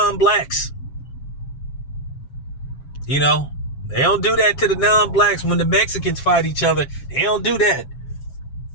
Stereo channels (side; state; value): right; late; 7.3 ms